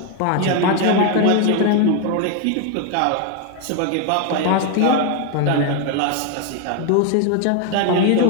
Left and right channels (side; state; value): both; different; correlation 0.01